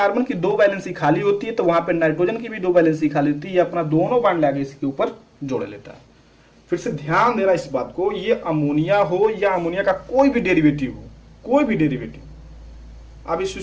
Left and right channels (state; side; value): identical; both; correlation 1.00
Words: की 2 वैलेंसी खाली होती है, तो वहां पे नाइट्रोजन की भी 2 वैलेंसी खाली होती है, ये अपना दोनों बांड लाके इसके ऊपर जोड़ लेता है। फिर से ध्यान देना इस बात को, ये अमोनिया हो या अमोनिया का कोई भी डेरिवेटिव हो, कोई भी डेरिवेटिव, अब इस